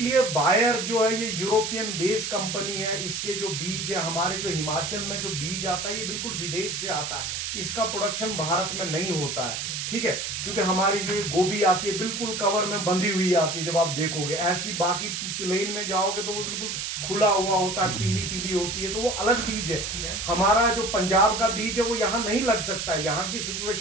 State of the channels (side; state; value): right; noise; hiss, 3 dB below the sound